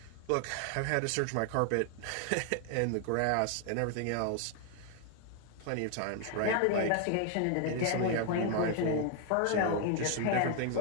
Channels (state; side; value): different; both; correlation 0.00